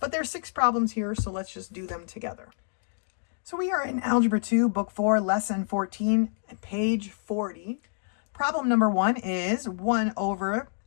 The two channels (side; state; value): right; silent; digital silence